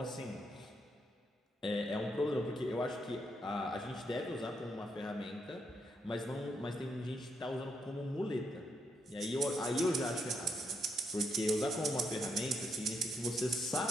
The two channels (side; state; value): both; normal; correlation 0.78